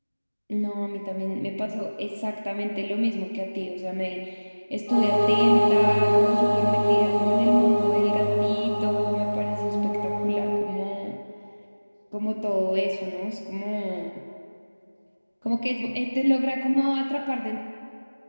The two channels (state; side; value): inverted; both; correlation -1.00